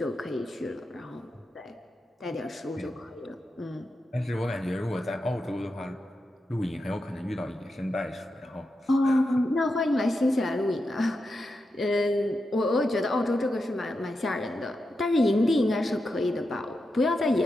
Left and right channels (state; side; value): normal; both; correlation 0.88